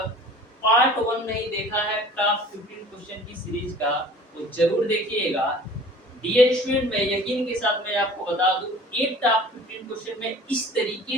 पार्ट 1 नहीं देखा है टॉप 15 क्वेश्चन की सीरीज का, वो जरूर देखिएगा। डियर स्टूडेंट, मैं यकीन के साथ मैं आपको बता दूं, एक टॉप 15 क्वेश्चन में इस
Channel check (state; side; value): normal; both; correlation 0.46